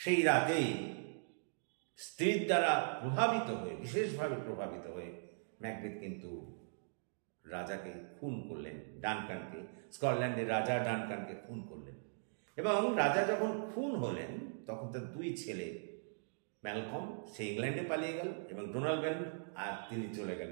রাতেই স্ত্রীর দ্বারা বিশেষভাবে প্রভাবিত হয়ে ম্যাকবেথ কিন্তু রাজাকে খুন করলেন, ডানকানকে, স্কটল্যান্ডের রাজা ডানকানকে খুন করলেন। এবং রাজা যখন খুন হলেন তখন তার দুই ছেলে ম্যালকম সে ইংল্যান্ডে পালিয়ে গেল এবং ডোনাল্ড আর তিনি চলে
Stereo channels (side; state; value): left; silent; digital silence